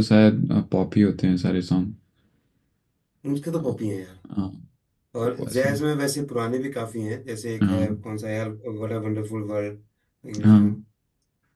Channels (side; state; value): both; identical; correlation 1.00